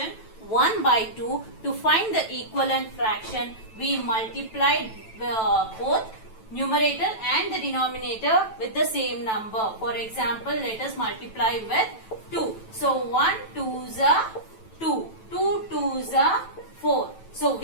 1 by 2. To find the equivalent fraction, we multiplied both numerator and the denominator with the same number. For example, let us multiply with 2. So 1 2s are 2, 2 2s are 4. So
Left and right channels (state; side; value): late; right; 9.1 ms